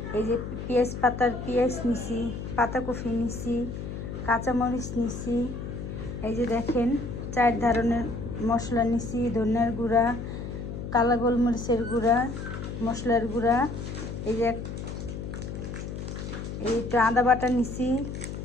এই যে পেঁয়াজ নিছি, পাতাকপি নিছি, কাঁচামরিচ নিছি। এই যে দেখেন 4 ধরনের মশলা নিছি, ধনিয়ার গুঁড়া, কালো গোলমরিচের গুঁড়া, মশলার গুঁড়া। এই যে একটু আদা বাটা নিছি,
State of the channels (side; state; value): left; noise; hum, 7 dB below the sound